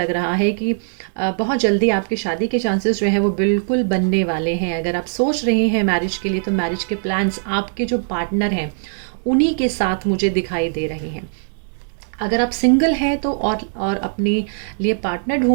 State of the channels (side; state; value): left; silent; 66 dB below the other